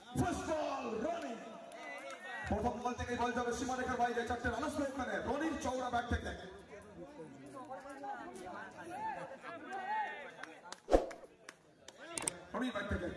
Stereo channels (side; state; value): both; identical; correlation 1.00